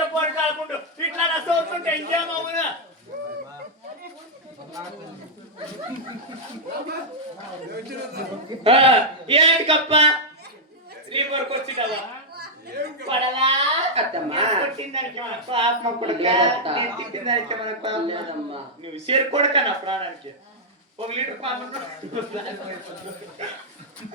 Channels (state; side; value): normal; both; correlation -0.05